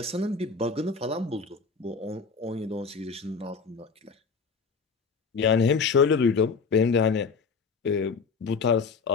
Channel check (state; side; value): quieter; right; 5.0 dB